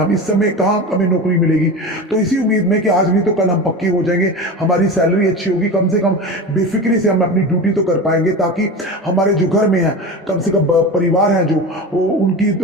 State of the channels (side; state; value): both; normal; correlation 0.27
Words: इस समय कहाँ हमें नौकरी मिलेगी। तो इसी उम्मीद में कि आज नहीं तो कल हम पक्के हो जाएंगे, हमारी सैलरी अच्छी होगी, कम से कम बेफिक्री से हम अपनी ड्यूटी तो कर पाएंगे, ताकि हमारे जो घर में है, कम से कम परिवार है जो, वो